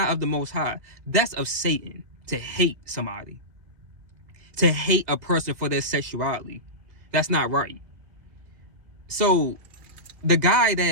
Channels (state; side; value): late; left; 2.0 ms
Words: of the Most High. That's of Satan, to hate somebody. To hate a person for their sexuality. That's not right. So the guy